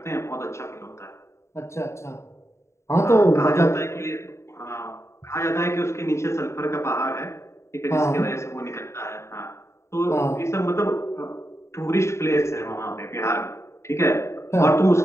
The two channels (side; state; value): right; late; 0.13 ms